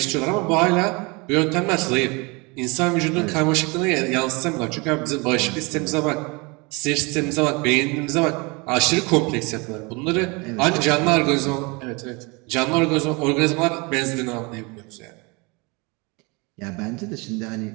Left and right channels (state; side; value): quieter; left; 28.1 dB